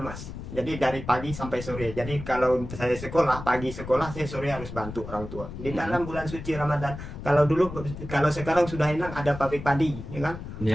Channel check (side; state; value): left; noise; rumble, 10 dB below the sound